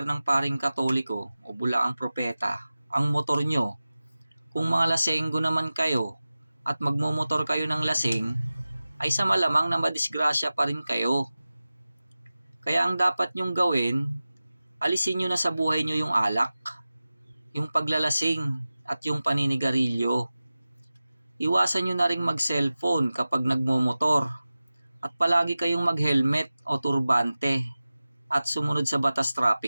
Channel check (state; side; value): inverted; both; correlation -0.96